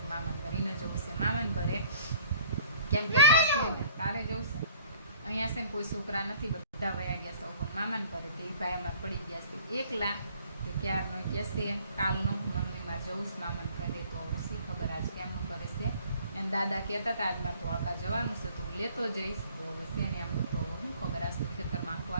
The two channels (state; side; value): inverted; both; correlation -0.54